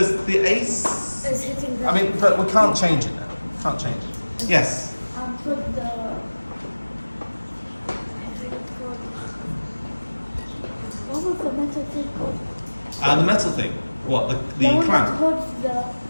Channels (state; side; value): inverted; both; correlation -1.00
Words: the AC. Is hitting the. I mean, but we can't change it now. Can't change it. Yes. Put the. What was the metal thing called? The metal thing. What the The one that clamp? holds the.